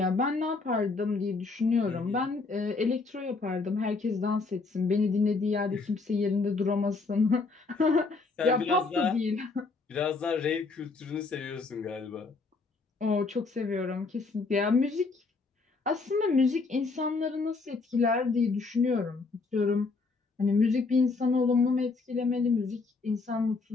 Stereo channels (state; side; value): quieter; right; 4.1 dB